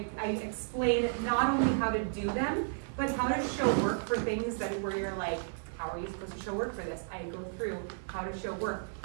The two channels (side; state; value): left; silent; digital silence